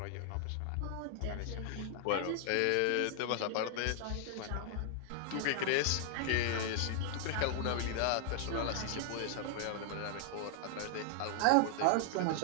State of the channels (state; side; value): different; both; correlation 0.00